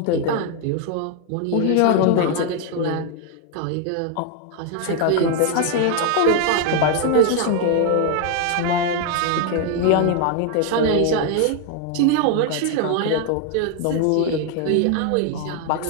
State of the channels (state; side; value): different; both; correlation 0.01